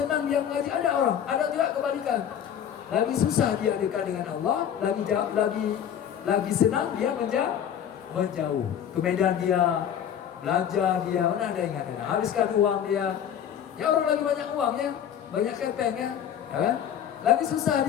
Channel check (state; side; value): quieter; right; 9.3 dB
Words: dia ngaji, ada orang, ada juga kebalikan. Lagi susah dia dekat dengan Allah, lagi senang dia menjauh. Kemudian dia belanja dia, mana ada yang ada, habiskan uang dia. Ya orang lagi banyak uang ya, banyak kepeng ya kan? Lagi susah